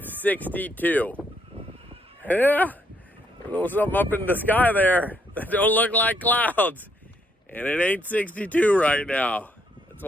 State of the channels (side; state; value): both; normal; correlation 0.73